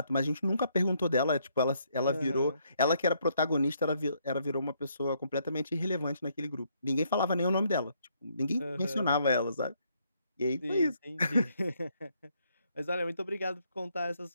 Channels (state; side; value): inverted; both; correlation -0.71